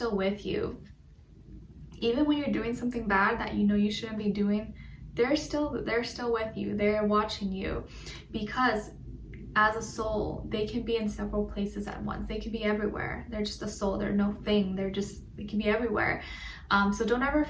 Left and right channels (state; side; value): identical; both; correlation 1.00